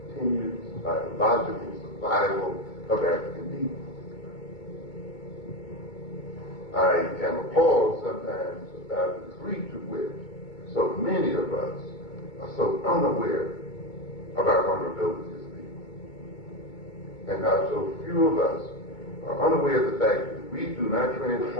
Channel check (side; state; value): right; late; 2.2 ms